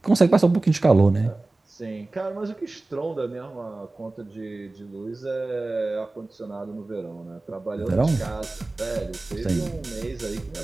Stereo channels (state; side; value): quieter; left; 3.1 dB